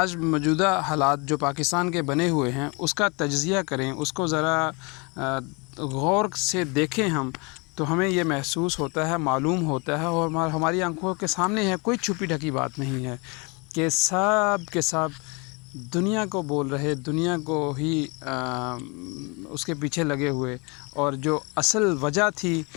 موجودہ حالات جو پاکستان کے بنے ہوئے ہیں اس کا تجزیہ کریں، اس کو ذرا غور سے دیکھیں ہم، تو ہمیں یہ محسوس ہوتا ہے، معلوم ہوتا ہے، اور ہماری آنکھوں کے سامنے ہے، کوئی چھپی ڈھکی بات نہیں ہے کہ سب کے سب دنیا کو بول رہے، دنیا کو ہی اس کے پیچھے لگے ہوئے، اور جو اصل وجہ تھی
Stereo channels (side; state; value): right; quieter; 30.1 dB